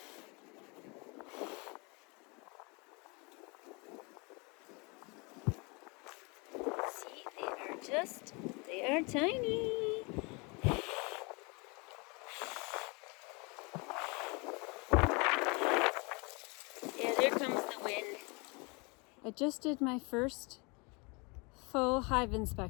They are tiny. Yeah, there comes the wind. I just did my first full hive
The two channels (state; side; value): quieter; right; 29.5 dB